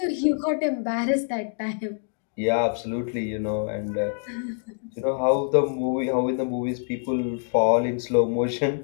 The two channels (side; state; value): right; silent; 60 dB below the other